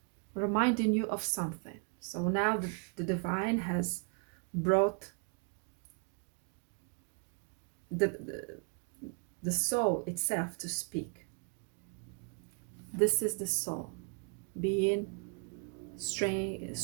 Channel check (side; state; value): left; quieter; 35.8 dB